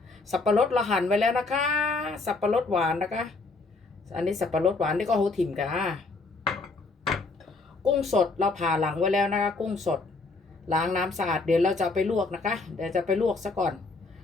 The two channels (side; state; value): right; quieter; 3.7 dB